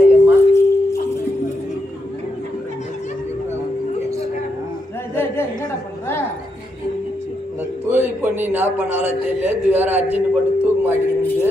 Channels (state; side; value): normal; both; correlation 0.82